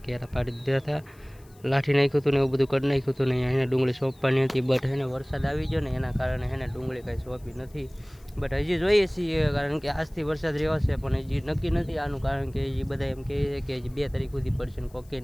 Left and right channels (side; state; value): left; noise; hiss, 29 dB below the sound